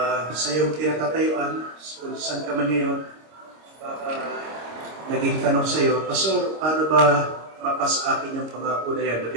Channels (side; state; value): left; late; 26 ms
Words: sa iyong tinatatayuan, kung saan ka man ngayon, naging tanong sa iyo, Pastor, paano ba mapasa akin yung pangako na yan na